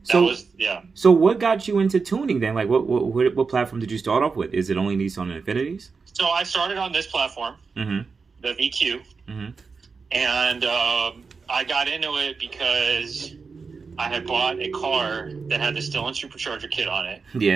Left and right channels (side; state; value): left; quieter; 4.9 dB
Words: was. So what got you into tuning then? Like, what platform did you start off with? Is it only Nissan and Infinitis? So I started on this platform, the VQ, and I got into it because I had bought a car that had the Stillen supercharger kit on it.